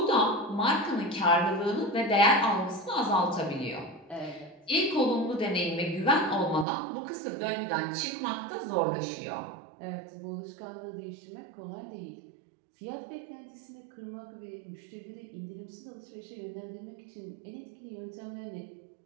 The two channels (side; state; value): left; drops out; at 6.7 s